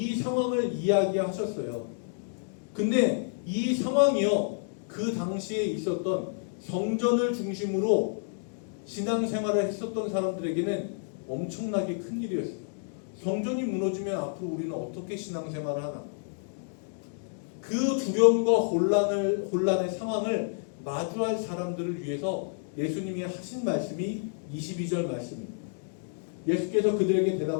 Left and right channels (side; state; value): right; silent; digital silence